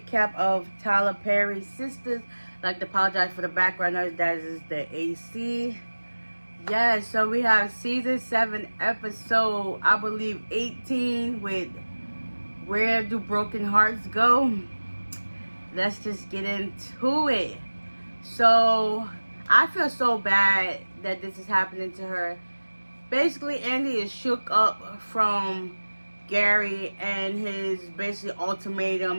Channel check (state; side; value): inverted; both; correlation -1.00